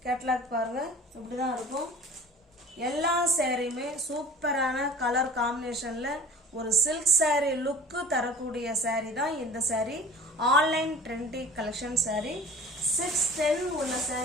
கேட்லாக் பாருங்க, இப்படி தான் இருக்கும். எல்லா சாரியுமே சூப்பரான கலர் காம்பினேஷனில் ஒரு சில்க் saree லுக்கு தரக்கூடிய saree தான் இந்த saree. Online trendy collection saree 610 உள்ள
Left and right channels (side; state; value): both; normal; correlation 0.40